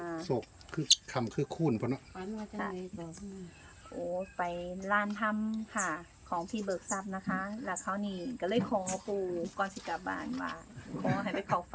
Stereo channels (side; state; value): both; identical; correlation 1.00